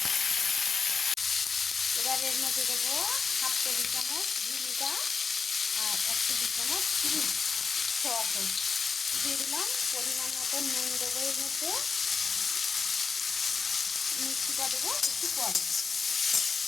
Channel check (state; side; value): quieter; right; 5.3 dB